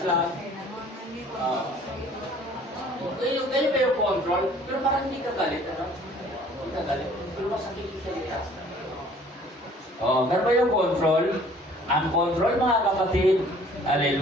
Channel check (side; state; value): both; normal; correlation 0.54